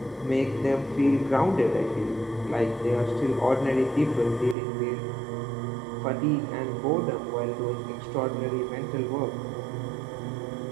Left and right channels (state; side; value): drops out; left; at 4.5 s